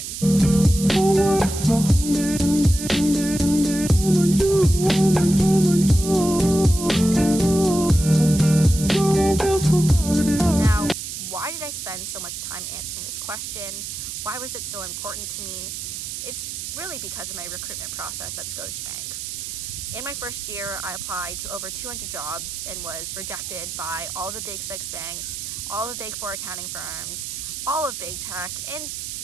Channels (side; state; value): right; noise; hiss, 7 dB below the sound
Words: Now, why did I spend so much time answering this question? Why was it so important to me? It's really because of my recruitment process at Scotiabank. In my first year, I applied to over 200 jobs and was rejected by all the big six banks, all the big four accounting firms, all of big tech, and